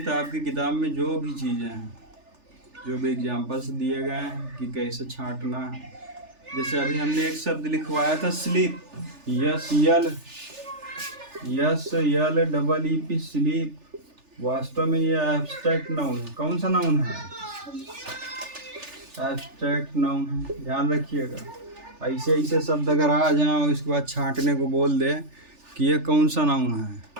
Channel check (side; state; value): left; late; 3.4 ms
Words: आपकी किताब में जो भी चीज़ें हैं, जो भी एग्जाम्पल्स दिए गए हैं कि कैसे छांटना है। जैसे अभी हमने एक शब्द लिखवाया था स्लीप, SLEEP स्लीप। वास्तव में ये एब्स्ट्रैक्ट नाउन है। कौन सा नाउन है, एब्स्ट्रैक्ट नाउन है, ध्यान रखिएगा। ऐसे ऐसे शब्द अगर आ जाएं और इसके बाद छांटने को बोल दे कि ये कौन सा नाउन